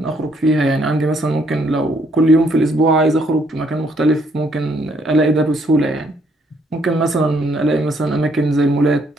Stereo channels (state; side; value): normal; both; correlation 0.69